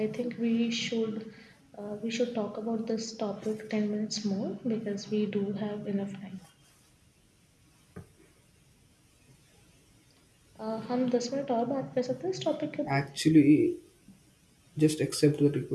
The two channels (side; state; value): both; identical; correlation 1.00